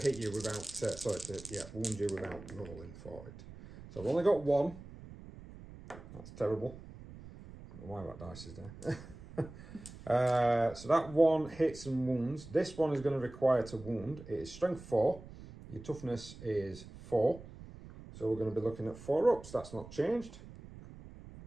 you without, wound you without rolling for it. So I've only got 1. That's terrible. I don't know why that dice is there. So that 1 hits and wounds. This one is going to require to wound. It is strength 4. Your toughness is 4. So we're going to be looking at 4 ups. That's not changed.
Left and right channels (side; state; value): right; noise; rumble, 16 dB below the sound